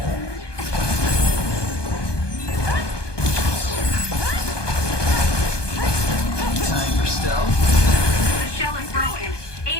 Time for stealth. The shell is broken.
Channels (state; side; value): late; right; 1.2 ms